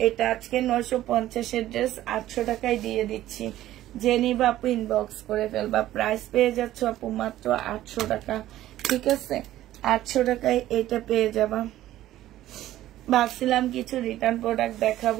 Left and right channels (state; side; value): quieter; left; 14.0 dB